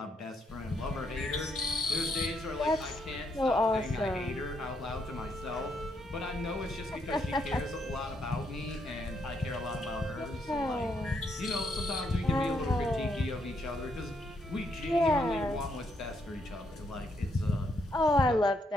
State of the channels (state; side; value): normal; both; correlation 0.76